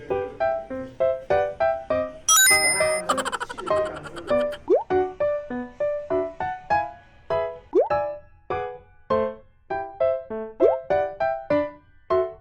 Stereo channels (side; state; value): both; identical; correlation 1.00